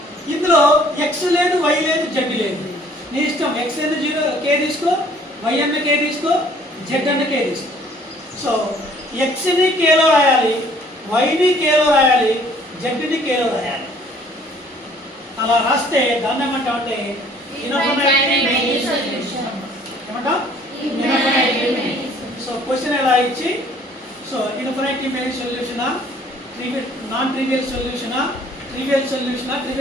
ఇందులో x లేదు, y లేదు, z లేదు. నీ ఇష్టం. x ఏదో 0 k తీసుకో, y అన్న k తీసుకో, z అన్న k తీసుకో. సో x ని k లో రాయాలి, y ని k లో రాయాలి, z ని k లో రాయాలి. అలా రాస్తే దాన్ని ఏమంటామంటే ఇన్ఫినిటీ మెనీ సొల్యూషన్ ఏమంటాం. సో క్వశ్చన్ ఎలా ఇచ్చి సో ఇన్ఫినిటీ మెనీ సొల్యూషనా, నాన్ ట్రివియల్ సొల్యూషనా, ట్రివియల్ సొల్యూషనా,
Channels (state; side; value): normal; both; correlation 0.57